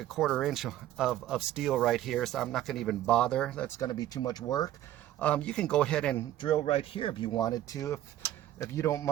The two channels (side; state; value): left; quieter; 13.1 dB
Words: 1/4 inch of steel right here, so I'm not going to even bother. That's going to be too much work. You can go ahead and drill right here if you wanted to, if you don't